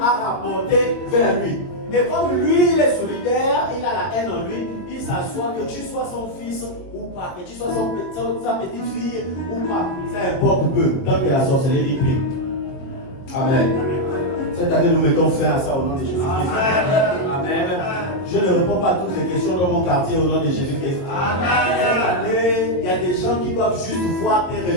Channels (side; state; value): right; late; 22 ms